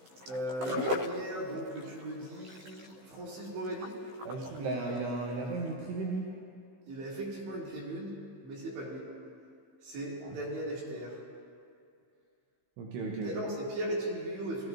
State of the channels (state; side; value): late; left; 15 ms